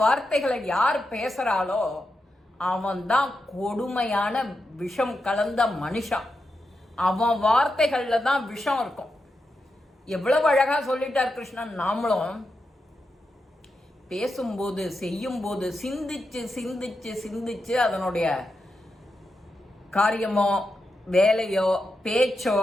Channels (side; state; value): both; normal; correlation 0.87